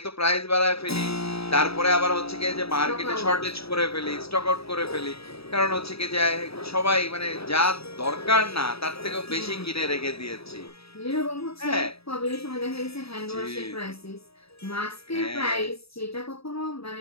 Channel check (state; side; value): late; right; 0.77 ms